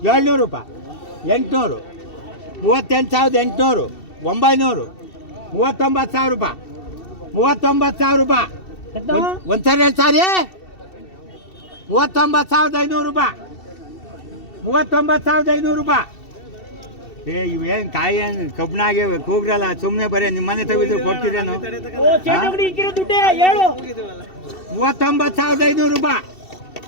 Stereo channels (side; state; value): right; late; 2.7 ms